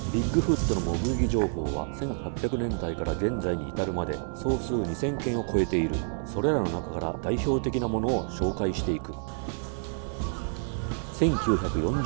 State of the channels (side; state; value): left; silent; digital silence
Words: ビッグフットの目撃情報は1800年代から現在に至るまで総数2000件を超えている。それらの中から代表的なものを紹介していく。